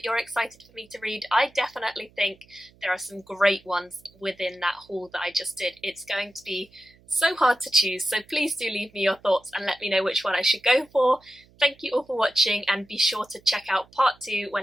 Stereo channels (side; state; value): right; noise; hum, 29 dB below the sound